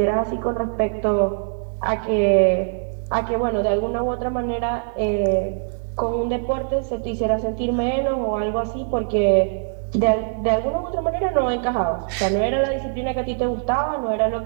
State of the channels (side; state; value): left; silent; digital silence